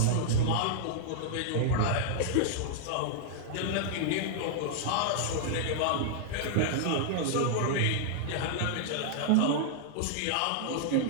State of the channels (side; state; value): both; different; correlation -0.01